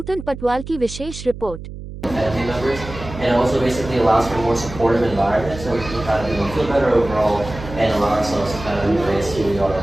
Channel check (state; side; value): noise; right; hum, 11 dB below the sound